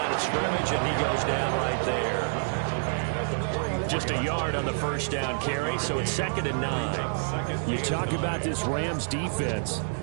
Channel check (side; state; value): left; silent; digital silence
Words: of scrimmage, and he goes down right there. Just a yard on the first down carry, so it's 2nd and 9. You talk about this Rams defense,